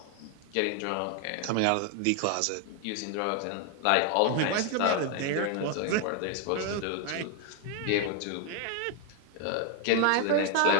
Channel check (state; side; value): different; both; correlation 0.01